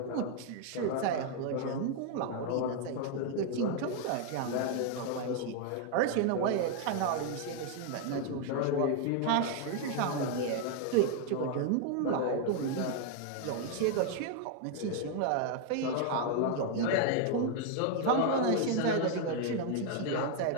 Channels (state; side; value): different; both; correlation 0.00